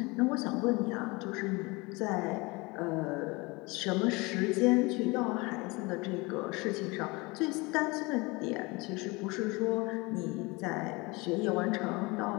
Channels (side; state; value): right; quieter; 25.3 dB